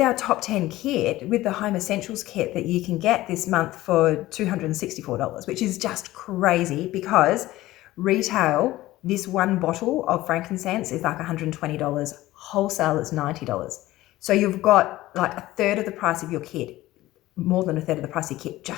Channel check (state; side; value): quieter; right; 16.7 dB